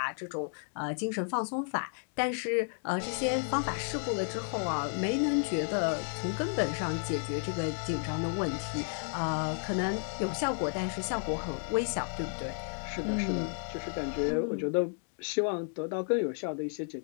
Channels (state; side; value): silent; right; 56 dB below the other